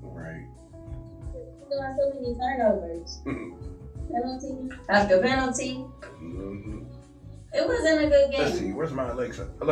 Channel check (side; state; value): both; identical; correlation 1.00